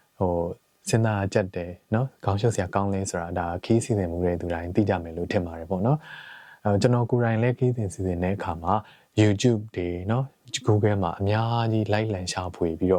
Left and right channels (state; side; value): identical; both; correlation 1.00